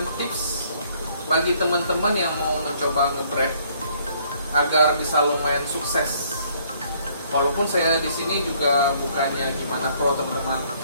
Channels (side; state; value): both; inverted; correlation -0.64